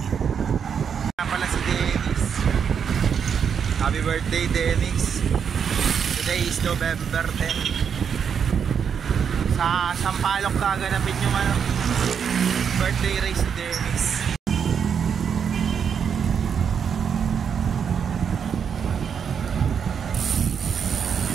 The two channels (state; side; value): quieter; left; 7.2 dB